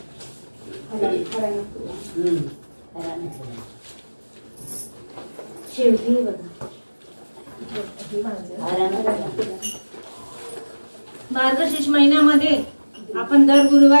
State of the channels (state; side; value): inverted; both; correlation -1.00